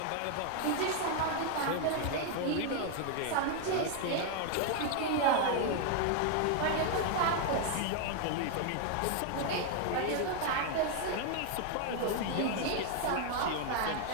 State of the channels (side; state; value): both; different; correlation 0.00